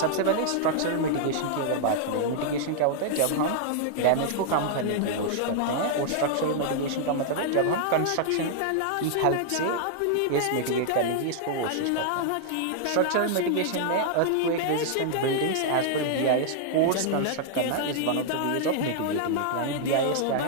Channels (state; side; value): different; both; correlation -0.01